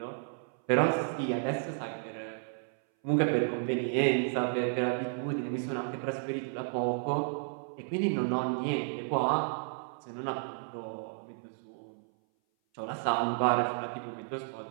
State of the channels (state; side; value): silent; left; 56 dB below the other